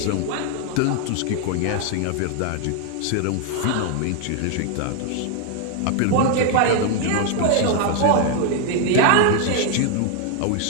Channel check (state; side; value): different; both; correlation 0.00